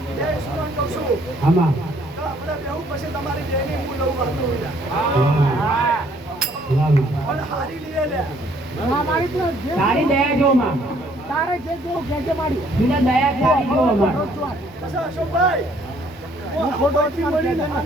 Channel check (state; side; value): normal; both; correlation 0.63